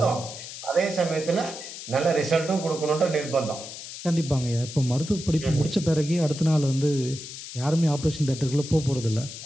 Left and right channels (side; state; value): left; noise; hiss, 11 dB below the sound